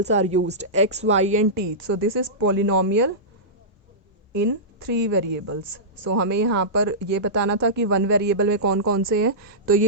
are used, x, y and t. So this is polynomial in three variables. So हमें यहाँ पर ये बताना था कि one variable में कौन कौन से हैं. तो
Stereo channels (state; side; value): normal; both; correlation -0.16